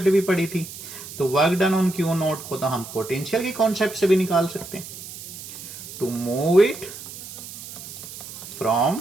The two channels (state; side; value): noise; right; hiss, 12 dB below the sound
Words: भी पढ़ी थी, तो work done on Q not को तो हम पोटेंशियल की कॉन्सेप्ट से भी निकाल सकते हैं। To move it from